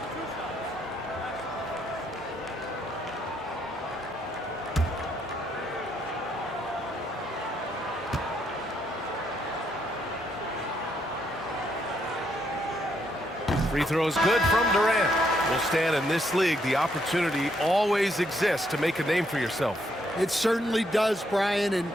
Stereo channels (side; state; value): both; normal; correlation 0.74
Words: Free throws good from Durant. Will stand in this league. The opportunity always exists to make a name for yourself. It certainly does, Brian. And